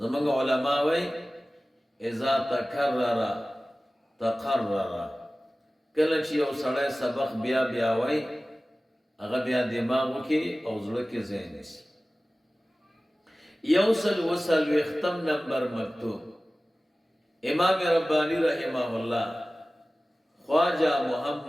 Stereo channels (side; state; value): both; normal; correlation 0.97